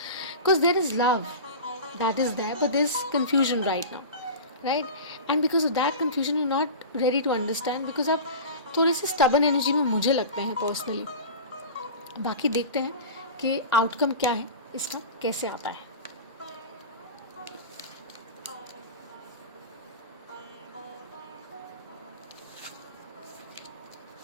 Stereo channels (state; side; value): inverted; both; correlation -0.32